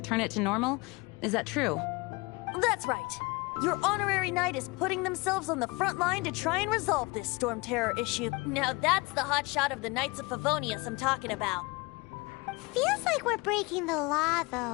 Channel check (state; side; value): quieter; right; 25.5 dB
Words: it to normal? Is that true? That's right. Your honorary knight is putting themselves on the front line to try and resolve this Storm Terror issue. Now that's the hotshot of the Knights of Favonius I'm talking about. Feels like we're breaking the law,